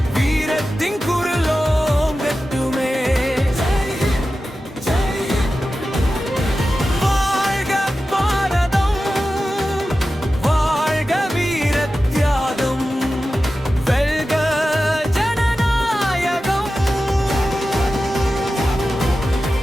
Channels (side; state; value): both; normal; correlation 0.93